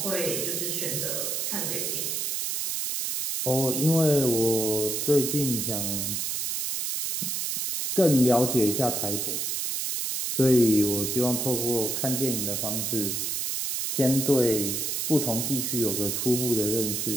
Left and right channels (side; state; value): right; noise; hiss, 1 dB below the sound